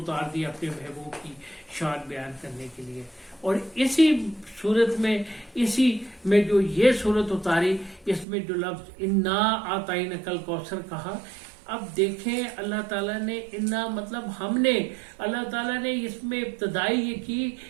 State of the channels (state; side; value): drops out; left; at 8.2 s